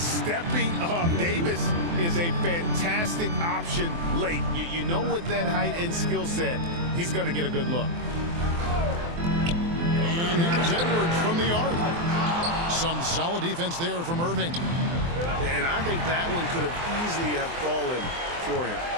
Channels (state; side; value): late; left; 24 ms